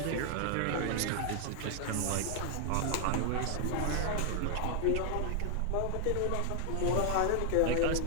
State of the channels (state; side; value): different; both; correlation 0.00